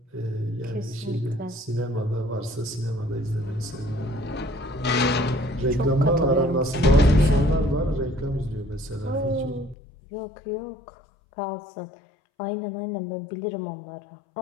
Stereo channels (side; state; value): right; drops out; at 9.8 s